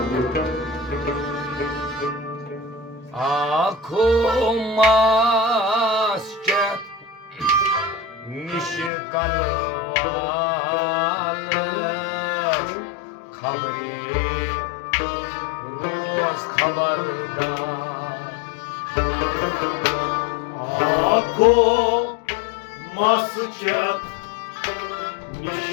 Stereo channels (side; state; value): right; drops out; at 8.9 s